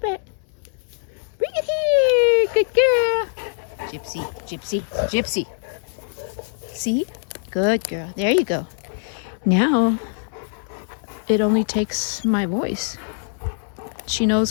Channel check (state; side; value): silent; right; 63 dB below the other